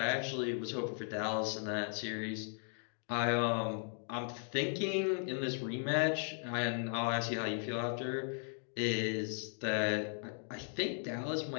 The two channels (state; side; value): silent; right; 53 dB below the other